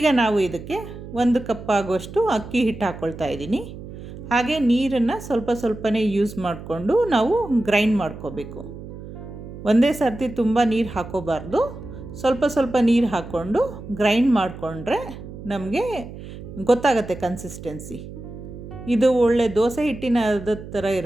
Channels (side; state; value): right; noise; hum, 13 dB below the sound